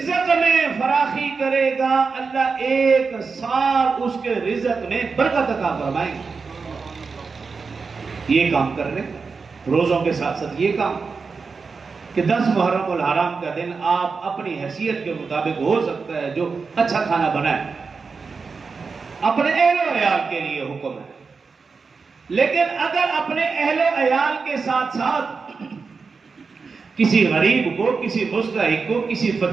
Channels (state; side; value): quieter; left; 4.8 dB